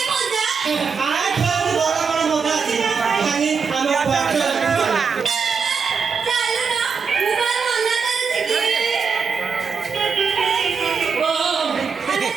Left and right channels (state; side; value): quieter; left; 5.6 dB